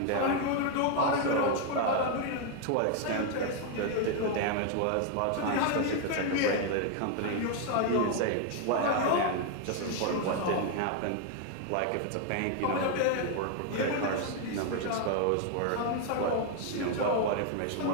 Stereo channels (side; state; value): both; different; correlation 0.00